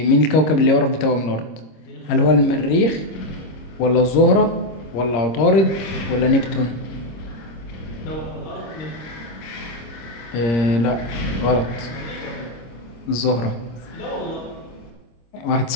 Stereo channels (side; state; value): right; late; 26 ms